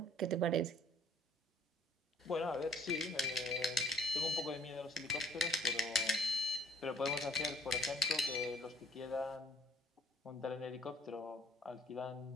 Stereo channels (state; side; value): normal; both; correlation 0.59